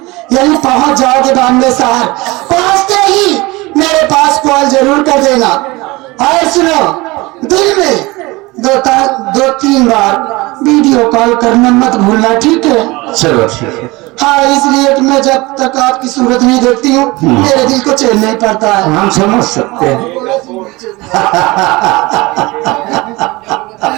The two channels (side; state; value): left; quieter; 22.4 dB